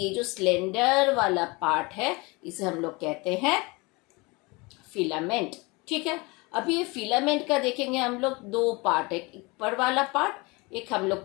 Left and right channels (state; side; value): quieter; right; 25.9 dB